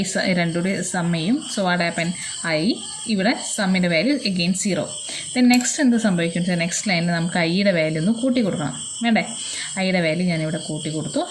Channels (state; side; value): identical; both; correlation 1.00